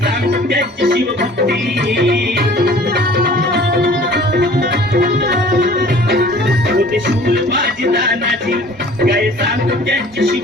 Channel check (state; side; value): normal; both; correlation 0.49